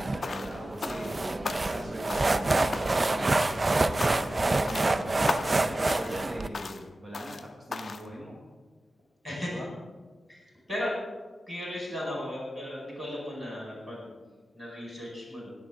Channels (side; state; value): both; normal; correlation 0.95